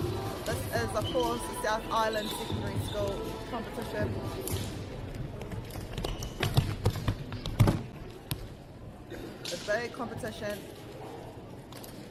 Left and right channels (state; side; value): identical; both; correlation 1.00